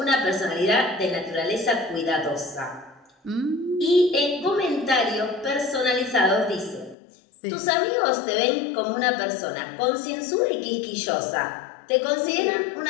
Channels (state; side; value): drops out; right; at 7.0 s